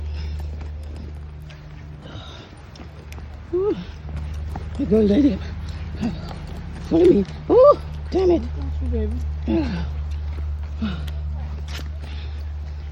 You go, lady. Follow me. Oh, damn it.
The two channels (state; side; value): identical; both; correlation 1.00